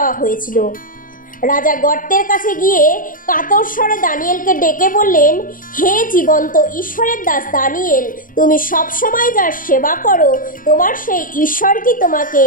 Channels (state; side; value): late; right; 0.39 ms